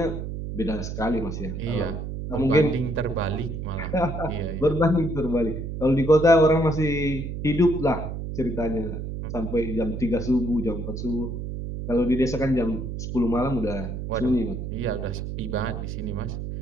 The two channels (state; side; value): noise; right; hum, 6 dB below the sound